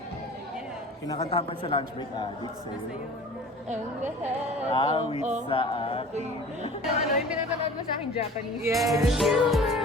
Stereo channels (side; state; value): both; normal; correlation 0.43